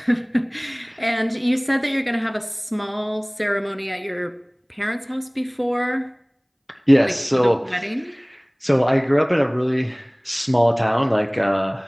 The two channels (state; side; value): identical; both; correlation 1.00